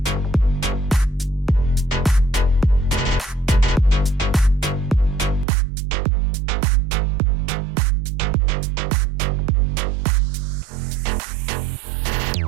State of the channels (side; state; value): left; drops out; at 5.5 s